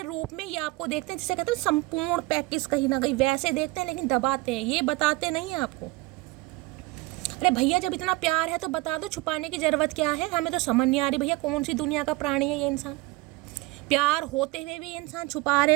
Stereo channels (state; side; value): quieter; left; 21.5 dB